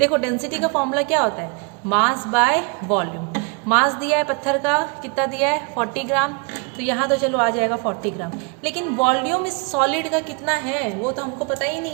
डेंसिटी का फॉर्मूला क्या होता है, मास बाय वॉल्यूम। मास दिया है पत्थर का, कितना दिया है 40 ग्राम, तो यहाँ तो चलो आ जाएगा 40 ग्राम। लेकिन वॉल्यूम इस सॉलिड का कितना है वो तो हमको पता ही नहीं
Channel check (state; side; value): quieter; left; 33.1 dB